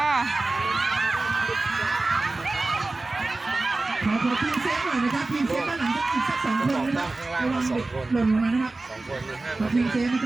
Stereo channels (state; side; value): quieter; left; 3.2 dB